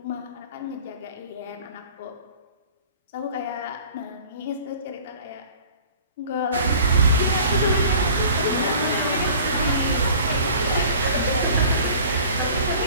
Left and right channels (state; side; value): inverted; both; correlation -0.47